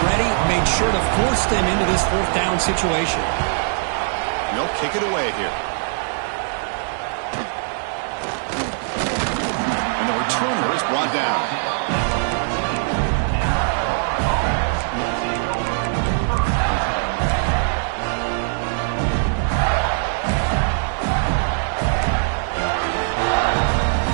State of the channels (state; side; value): silent; left; digital silence